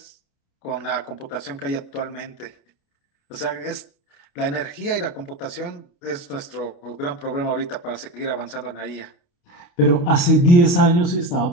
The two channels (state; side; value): late; right; 29 ms